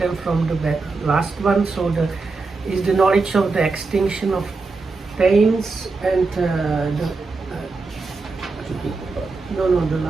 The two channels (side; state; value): left; quieter; 4.0 dB